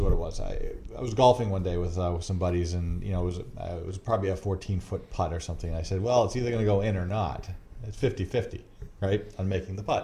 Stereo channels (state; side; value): identical; both; correlation 1.00